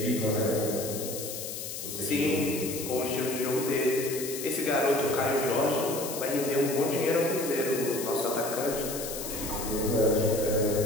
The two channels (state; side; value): noise; left; hiss, 7 dB below the sound